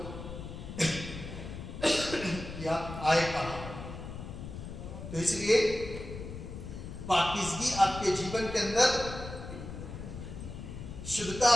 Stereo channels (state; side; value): noise; left; rumble, 9 dB below the sound